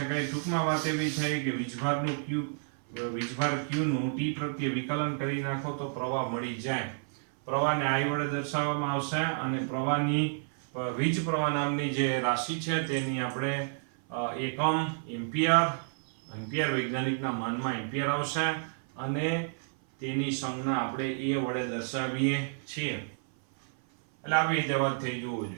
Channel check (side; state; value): left; silent; 55 dB below the other